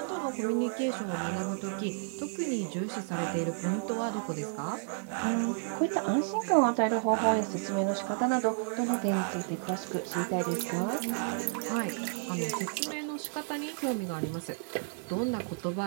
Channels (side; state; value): left; silent; 57 dB below the other